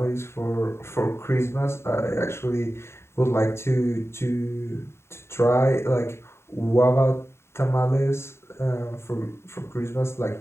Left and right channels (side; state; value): right; late; 0.12 ms